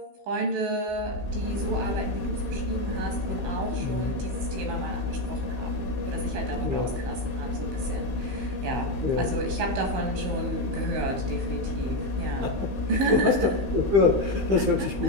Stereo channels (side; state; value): left; late; 15 ms